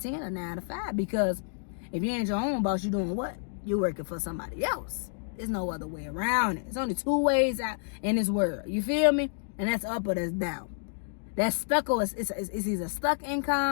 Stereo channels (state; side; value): silent; right; digital silence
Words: or 9 to 5. Because if you ain't your own boss, you doing what? You're working for somebody else. There's no other way around it. It's only 2 ways out in this world. You feel me? And that's up or that's down. That's stuck or it's either stuck